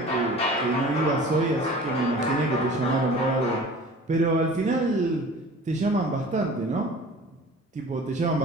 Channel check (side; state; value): both; normal; correlation 0.43